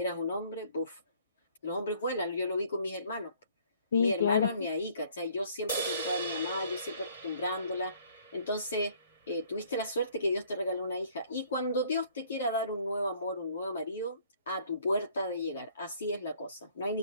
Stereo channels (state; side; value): inverted; both; correlation -0.59